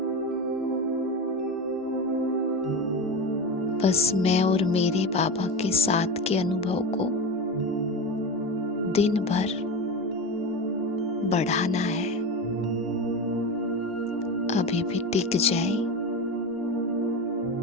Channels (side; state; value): both; normal; correlation 0.23